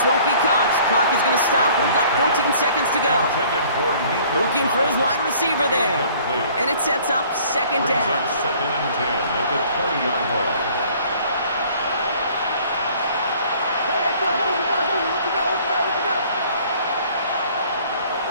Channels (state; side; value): inverted; both; correlation -0.54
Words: won't be caught. Clock is going to stop. We've got 14 seconds to go. Looking for his wide receiver there. And it sets up second down. 2nd and 10 at the 20-yard line.